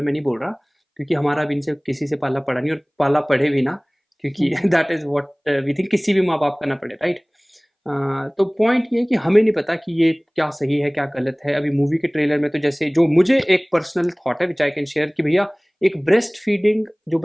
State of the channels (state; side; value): identical; both; correlation 1.00